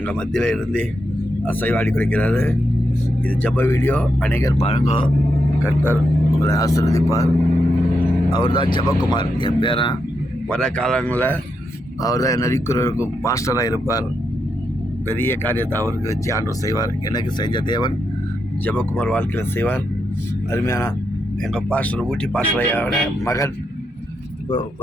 மத்தியில் இருந்து அசைவாடி குறைக்கிறாரு. இது ஜெப வீடியோ. அநேகர் பாருங்க. கர்த்தர் உங்களை ஆசீர்வதிப்பார். அவர் தான் ஜெபக்குமார், என் பேரன். வர காலங்களில் அவர் தான் நரிக்குறவருக்கும் பாஸ்டராக இருப்பார். பெரிய காரியத்தை அவருக்கு வச்சு ஆண்டவர் செய்வார். எனக்கு செஞ்ச தேவன் ஜெபக்குமார் வாழ்க்கையில் செய்வார். அருமையான எங்கள் பாஸ்டர் ஊட்டி பாஸ்டரையோட மகன் இப்போ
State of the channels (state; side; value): normal; both; correlation 0.83